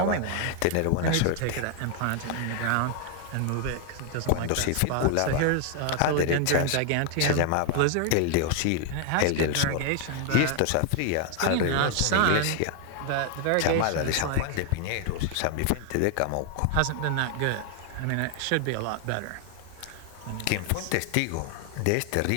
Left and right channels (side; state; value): both; different; correlation 0.00